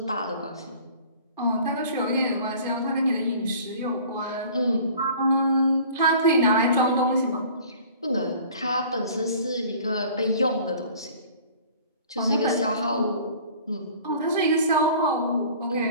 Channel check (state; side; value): inverted; both; correlation -0.48